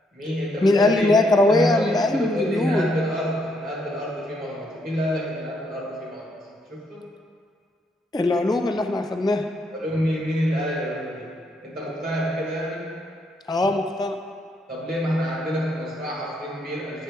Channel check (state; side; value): normal; both; correlation 0.74